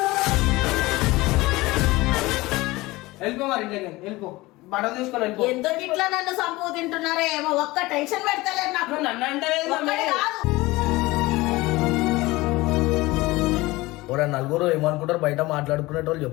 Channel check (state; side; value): quieter; right; 20.5 dB